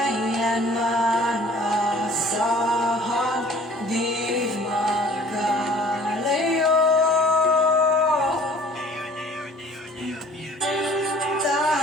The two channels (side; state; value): both; normal; correlation 0.51